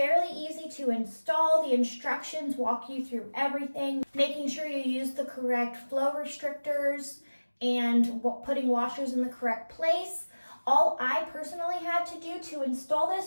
easy to install. The instructions walk you through everything, making sure you use the correct flow restrictors and putting washers in the correct place. All I personally had to do to install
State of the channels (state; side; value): inverted; both; correlation -1.00